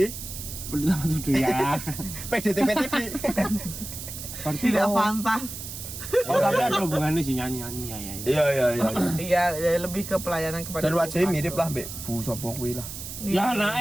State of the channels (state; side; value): noise; right; hiss, 9 dB below the sound